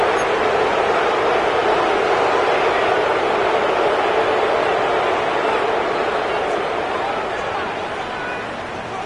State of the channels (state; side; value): identical; both; correlation 1.00